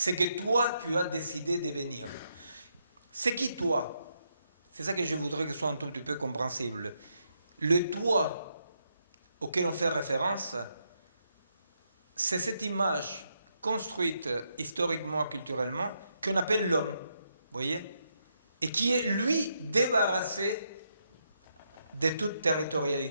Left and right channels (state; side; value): inverted; both; correlation -0.79